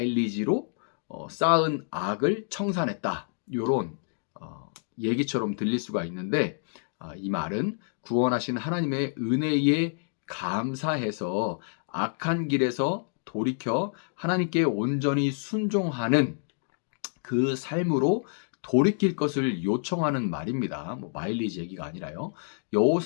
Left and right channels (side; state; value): right; silent; digital silence